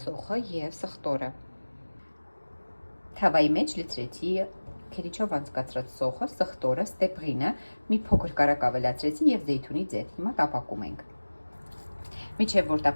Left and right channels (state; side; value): inverted; both; correlation -1.00